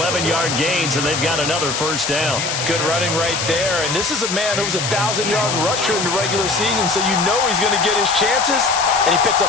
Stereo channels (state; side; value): noise; left; hiss, 2 dB below the sound